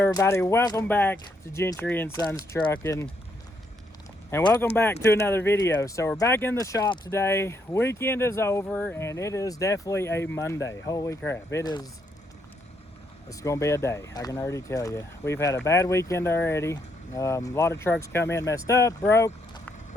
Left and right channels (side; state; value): both; normal; correlation 0.75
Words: Welcome back to Gentry and Sons Trucking, and welcome back to another video. So we're back in the shop today. Weekend is over, and it is definitely a Monday. Holy crap! It's gonna be a day. I can already tell you. We've had a bad weekend already. A lot of trucks come in messed up, broke,